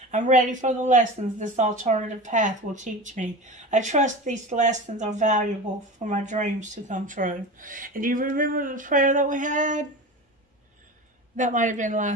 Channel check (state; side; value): normal; both; correlation 0.31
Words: I'm ready for the lessons this alternative path will teach me. I trust these lessons are valuable for my dreams to come true. And do you remember the prayer that we had? That might have been